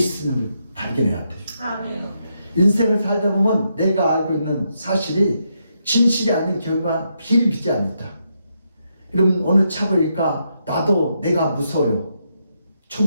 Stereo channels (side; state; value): both; inverted; correlation -0.81